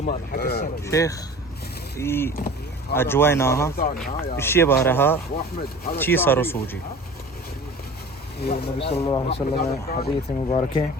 حق السنه شيخ في أجواءنا الشيء بارها شيء صار سوجي النبي صلى الله عليه وسلم حديث مبارك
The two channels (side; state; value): both; normal; correlation 0.41